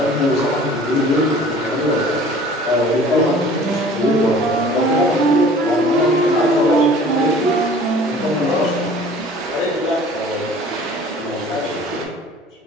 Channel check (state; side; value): normal; both; correlation 0.48